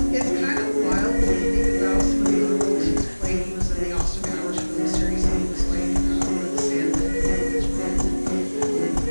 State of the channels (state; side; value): inverted; both; correlation -1.00